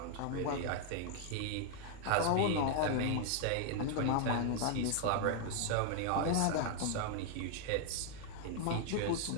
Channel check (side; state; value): both; different; correlation 0.00